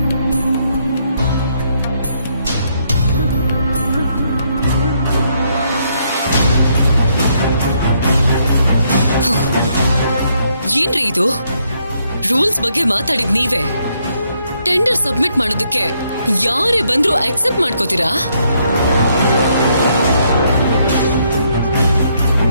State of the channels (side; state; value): both; inverted; correlation -0.73